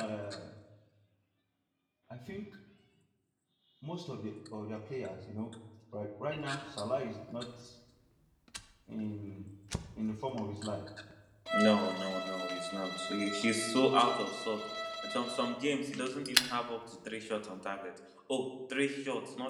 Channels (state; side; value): identical; both; correlation 1.00